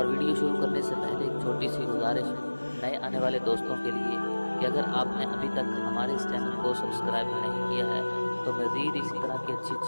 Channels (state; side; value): inverted; both; correlation -1.00